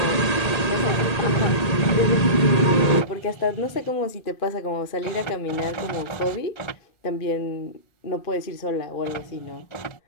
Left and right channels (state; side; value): late; right; 1.8 ms